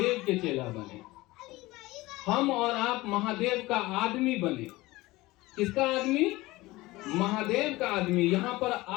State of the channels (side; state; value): right; quieter; 19.9 dB